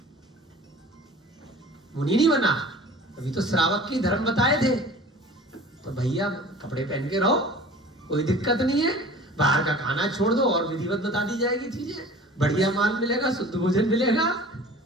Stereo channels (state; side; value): normal; both; correlation 0.43